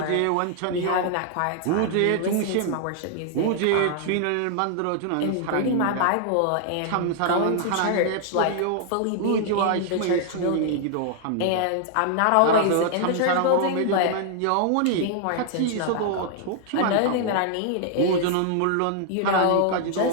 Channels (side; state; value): both; different; correlation -0.01